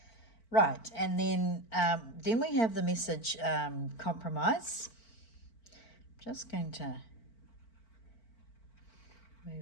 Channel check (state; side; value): late; right; 4.5 ms